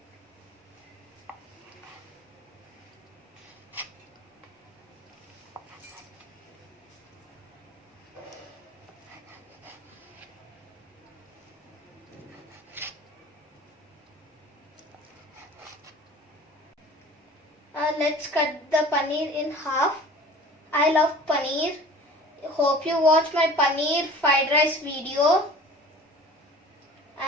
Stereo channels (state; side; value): normal; both; correlation 0.43